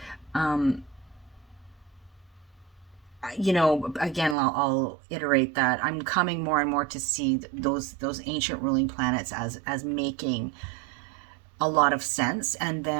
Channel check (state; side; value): drops out; left; at 4.4 s